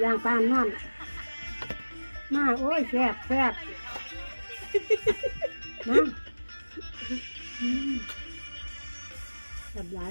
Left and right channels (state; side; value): inverted; both; correlation -1.00